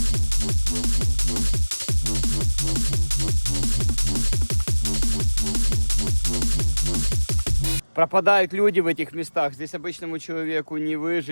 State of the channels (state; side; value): inverted; both; correlation -1.00